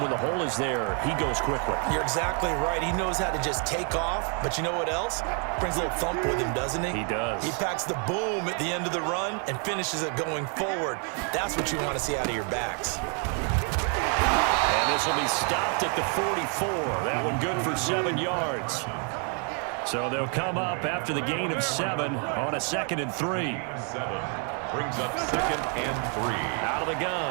the hole is there, he goes quickly. You're exactly right. He knows how to just take off, but you know what else? Brings a little thump with him, doesn't he? He does. He packs the boom at the end of the run and finishes it going forward. That's what you want to see out of your backs. And this will be stopped at the 44. That one good for 7 yards. So they'll come up after the gain of 7 on a 2nd and 3. 7 brings up 2nd and 3. Out of the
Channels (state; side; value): quieter; left; 39.6 dB